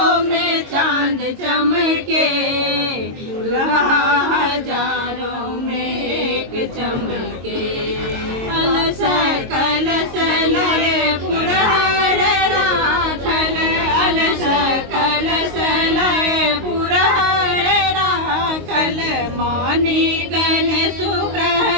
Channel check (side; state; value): left; late; 22 ms